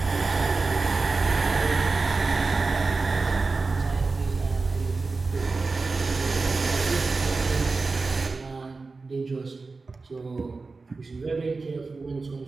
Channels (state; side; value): quieter; left; 3.9 dB